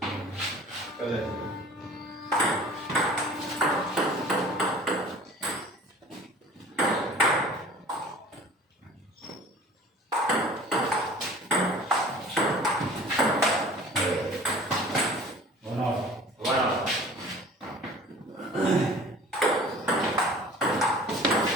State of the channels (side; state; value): both; normal; correlation 0.45